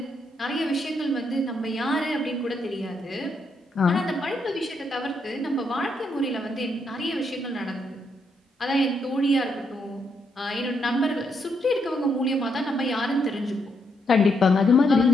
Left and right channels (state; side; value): normal; both; correlation 0.77